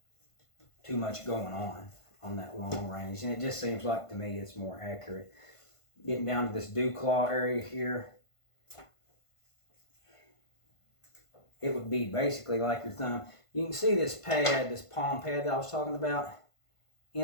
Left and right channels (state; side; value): late; right; 1.5 ms